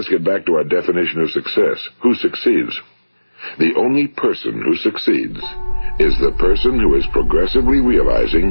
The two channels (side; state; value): both; inverted; correlation -1.00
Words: get back to our definition of success. Who succeeds? The only person who succeeds is the person who is progressively